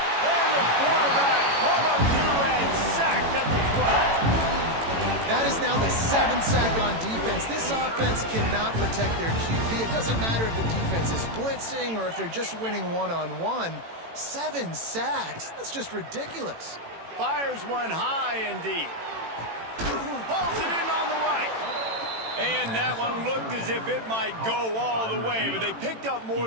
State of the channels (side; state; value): left; late; 18 ms